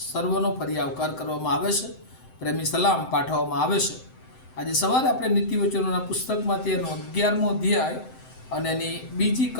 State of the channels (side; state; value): right; late; 7.8 ms